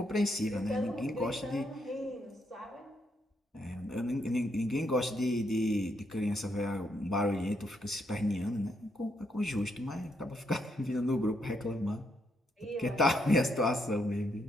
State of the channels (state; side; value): normal; both; correlation 0.77